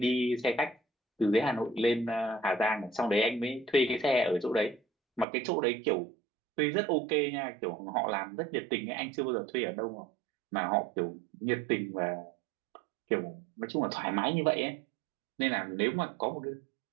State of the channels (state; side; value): drops out; left; at 5.2 s